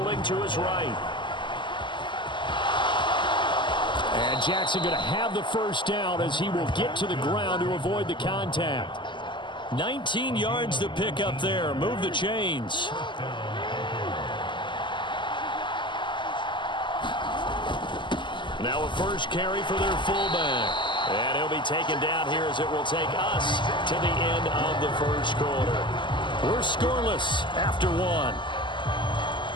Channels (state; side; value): late; right; 0.23 ms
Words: to his right. And Jackson going to have the first down as he will get to the ground to avoid the contact. 19 yards to pick up there. Move the chains. Now a first carry for their fullback. And he'll be taken down here as it will take us to the end of the first quarter. We're scoreless after one.